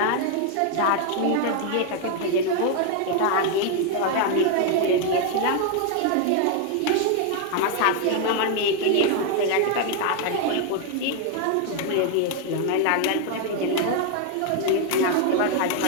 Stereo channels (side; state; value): both; different; correlation 0.01